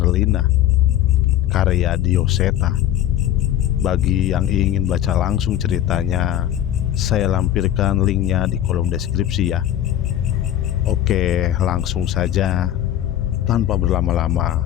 karya Dioseta. Bagi yang ingin baca langsung ceritanya, saya lampirkan linknya di kolom deskripsi ya. Oke, langsung saja. Tanpa berlama-lama,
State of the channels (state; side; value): quieter; right; 11.8 dB